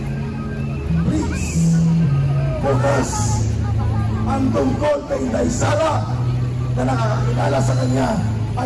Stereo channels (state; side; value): identical; both; correlation 1.00